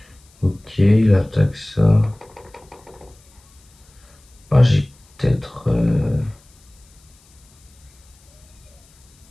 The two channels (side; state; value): left; noise; hiss, 30 dB below the sound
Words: Ok, il attaque ça. Ah, j'ai peut-être.